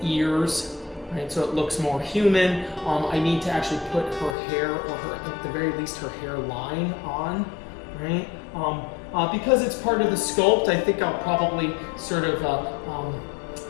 ears, right? So it looks more human. I need to actually put her hair, or at the very least her hairline on, right? Because it's part of the sculpt, I think I'll probably sort of, well,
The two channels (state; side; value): drops out; right; at 4.4 s